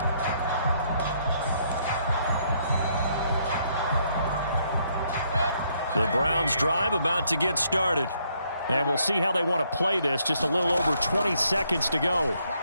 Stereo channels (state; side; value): inverted; both; correlation -0.71